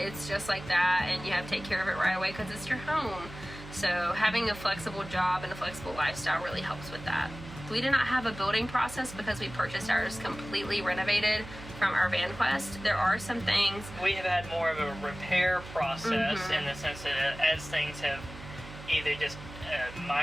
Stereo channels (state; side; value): noise; right; hum, 14 dB below the sound